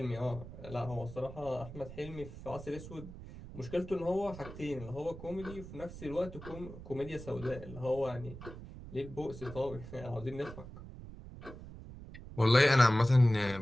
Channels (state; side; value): noise; right; rumble, 13 dB below the sound